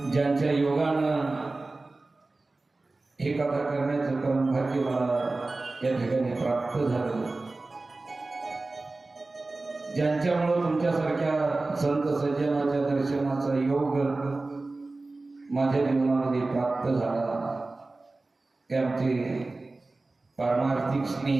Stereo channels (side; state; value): left; quieter; 3.3 dB